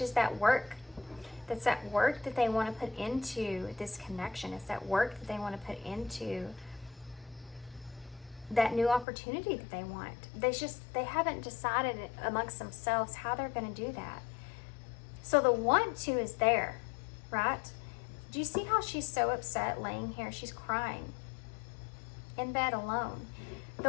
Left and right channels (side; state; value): right; drops out; at 9.1 s